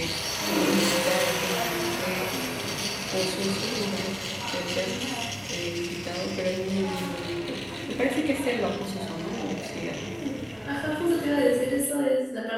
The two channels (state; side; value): identical; both; correlation 1.00